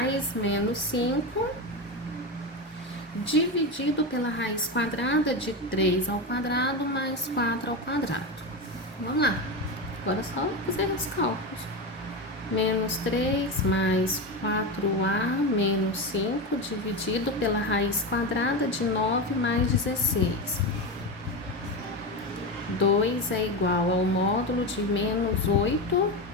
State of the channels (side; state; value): both; normal; correlation 0.17